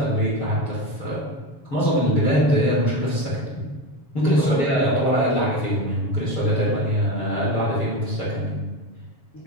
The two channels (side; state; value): right; late; 7.1 ms